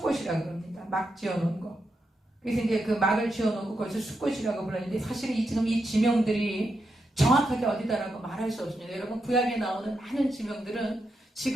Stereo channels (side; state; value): both; normal; correlation 0.85